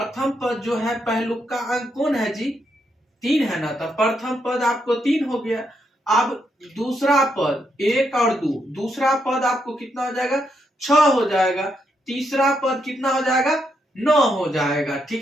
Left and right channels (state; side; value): normal; both; correlation 0.79